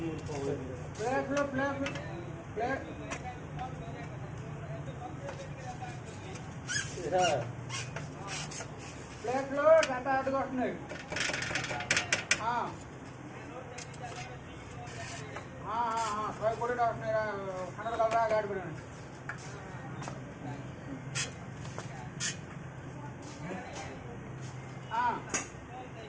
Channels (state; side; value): identical; both; correlation 1.00